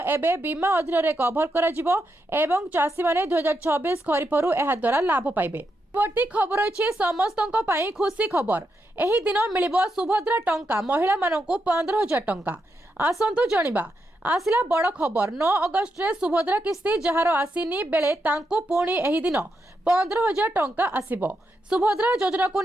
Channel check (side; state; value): both; normal; correlation 0.83